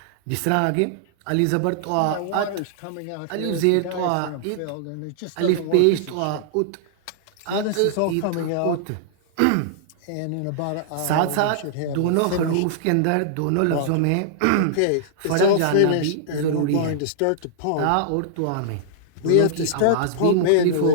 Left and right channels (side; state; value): both; different; correlation -0.01